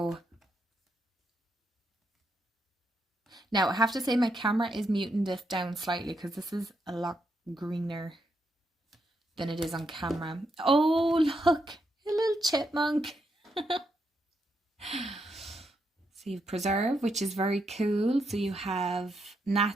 now I have to say my camera is muting this down slightly because this is a lot greener than it is on camera. Oh, look, a little chipmunk. So you have preserve, which is very cool. So you have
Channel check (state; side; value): normal; both; correlation 0.81